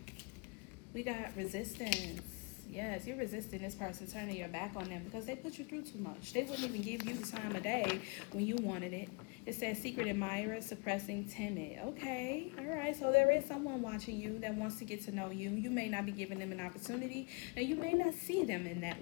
We got resistance. Yes, you're resisting this person, turning your back on them because they put you through too much. They wouldn't even give you the time of day when you wanted it. It says secret admirer, suppressing, timid. Okay, all right. So there is someone watching you that wants to get to know you. You may not be giving them an opportunity, and you may not see them in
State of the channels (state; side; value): quieter; right; 32.1 dB